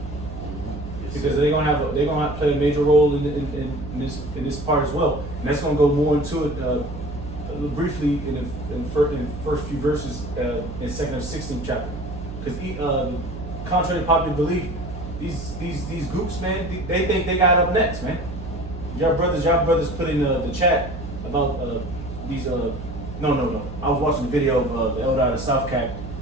because they're gonna have to play a major role in this part as well. And that's gonna go more into it briefly in the first few verses in 2 Kings 16 chapter, because contrary to popular belief, these groups, man, they think they got up next, man. Y'all brothers put in the chat about these. No. I was watching the video of the elder out of South Cap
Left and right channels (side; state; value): right; noise; hum, 10 dB below the sound